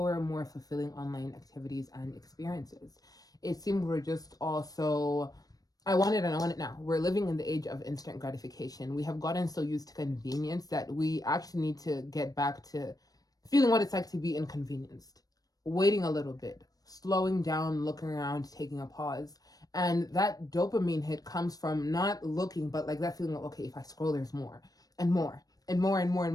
more fulfilling online activities and experiences. It seems we're just also, I want it and I want it now. We're living in the age of instant gratification. We have gotten so used to convenience that we actually need to get back to feeling what it's like to be inconvenienced, waiting a little bit, slowing down, looking around, taking a pause. And that dopamine hit comes from not looking, but like that feeling of, okay, if I scroll, there's more and more and more and more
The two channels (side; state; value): right; late; 0.18 ms